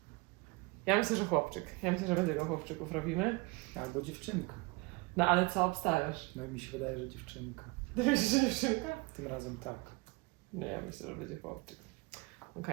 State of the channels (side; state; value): left; quieter; 26.2 dB